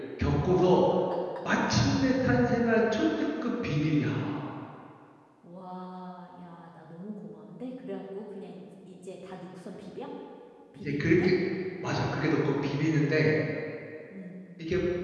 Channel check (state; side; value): identical; both; correlation 1.00